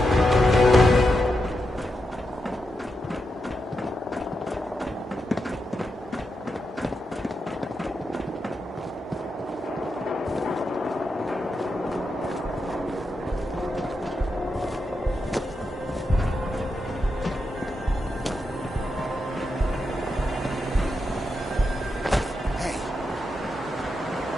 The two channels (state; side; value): normal; both; correlation 0.86